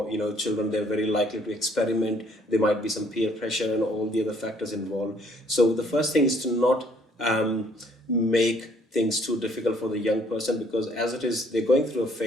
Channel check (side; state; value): both; normal; correlation 0.63